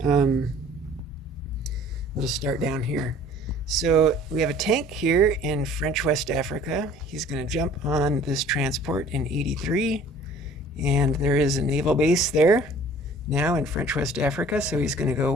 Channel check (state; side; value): normal; both; correlation 0.50